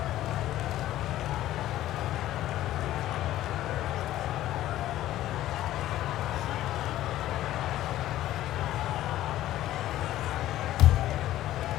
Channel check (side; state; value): right; quieter; 14.0 dB